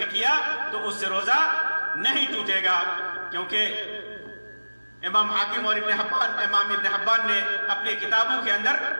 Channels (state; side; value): inverted; both; correlation -1.00